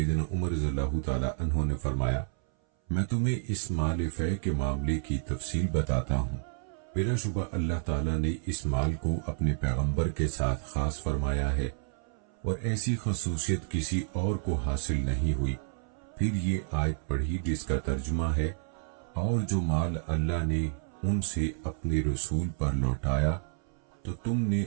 عمر رضی اللہ تعالی عنہ نے فرمایا، میں تمہیں اس مال فے کے معاملے کی تفصیل بتاتا ہوں۔ بلا شبہ اللہ تعالیٰ نے اس مال کو اپنے پیغمبر کے ساتھ خاص فرمایا ہے اور ایسی خصوصیت کسی اور کو حاصل نہیں ہوئی۔ پھر یہ آیت پڑھی جس کا ترجمہ ہے، اور جو مال اللہ نے ان سے اپنے رسول پر لوٹایا تو تم نے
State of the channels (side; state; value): left; silent; 58 dB below the other